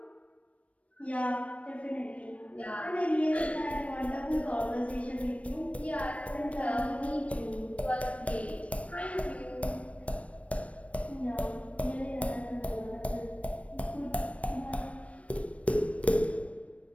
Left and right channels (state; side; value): late; right; 0.064 ms